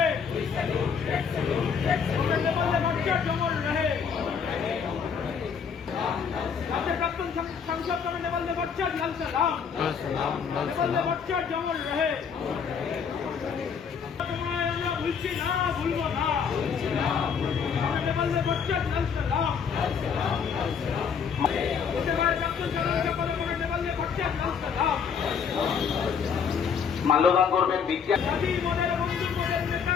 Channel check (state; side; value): quieter; right; 6.7 dB